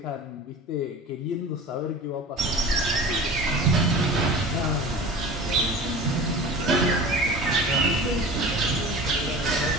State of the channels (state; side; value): normal; both; correlation 0.37